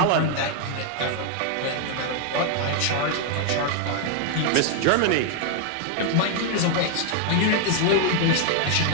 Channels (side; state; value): both; different; correlation 0.00